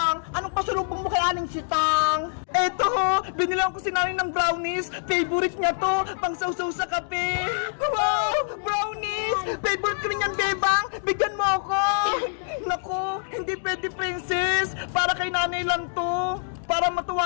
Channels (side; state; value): right; silent; digital silence